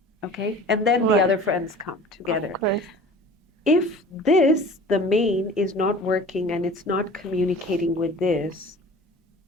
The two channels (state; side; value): normal; both; correlation 0.43